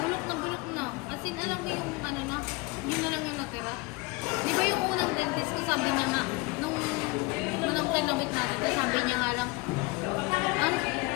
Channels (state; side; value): quieter; right; 24.3 dB